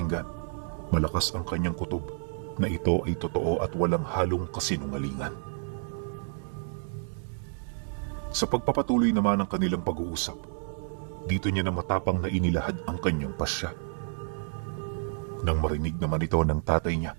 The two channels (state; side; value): silent; left; digital silence